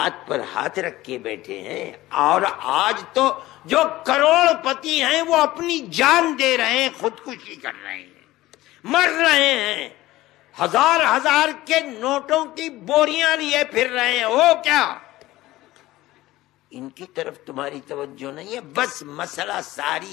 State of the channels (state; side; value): quieter; right; 17.0 dB